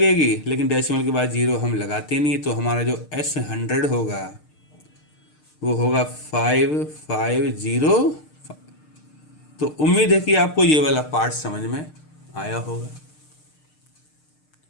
लेकिन डेसिमल के बाद 0 हम लगाते नहीं, तो हमारा जो S100 होगा वो होगा 5505। तो उम्मीद है कि आपको ये वाला पार्ट समझ में आया होगा।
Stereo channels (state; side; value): late; right; 6.6 ms